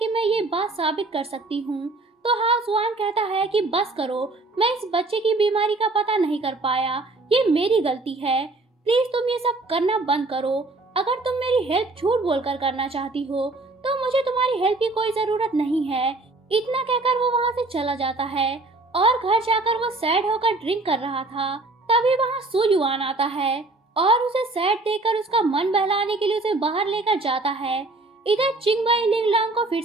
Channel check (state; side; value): quieter; left; 3.1 dB